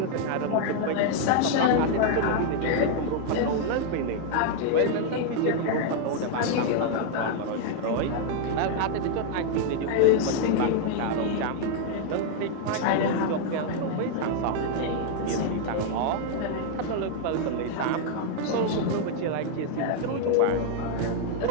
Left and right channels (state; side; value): different; both; correlation 0.00